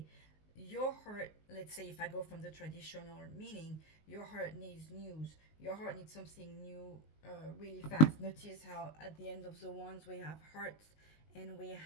your heart, let's say if I go from the traditional meaning, your heart needs news, your heart needs something new, really fast. Notice how at the end of the wands we have hearts and we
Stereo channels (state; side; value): late; right; 19 ms